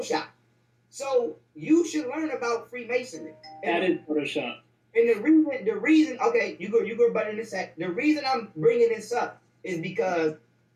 So you should learn about Freemasonry. That is Photoshop. And the reason, okay, you go better in a sec. The reason I'm bringing this up is because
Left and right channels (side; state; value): both; identical; correlation 1.00